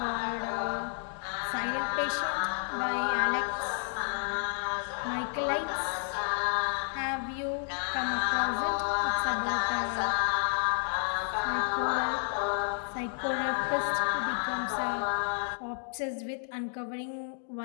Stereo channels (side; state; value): right; silent; 57 dB below the other